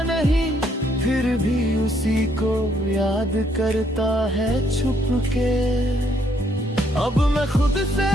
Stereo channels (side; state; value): both; normal; correlation 0.70